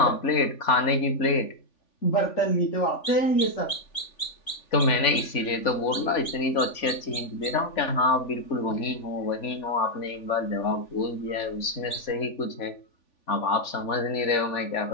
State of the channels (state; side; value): late; right; 3.5 ms